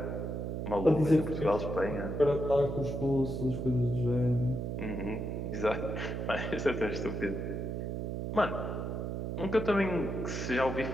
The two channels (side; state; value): right; noise; hum, 3 dB below the sound